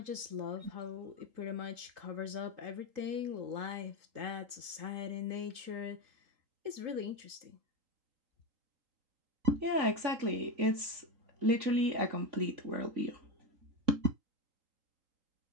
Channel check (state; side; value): late; left; 3.8 ms